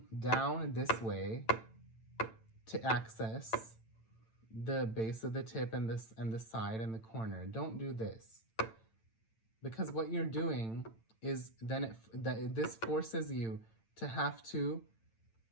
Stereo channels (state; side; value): late; right; 8.9 ms